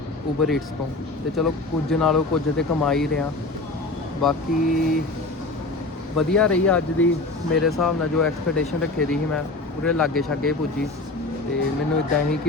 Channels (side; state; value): right; quieter; 3.1 dB